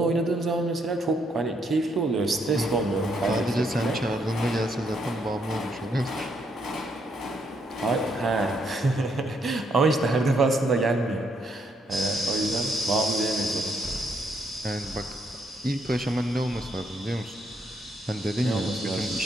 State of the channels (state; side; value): normal; both; correlation 0.74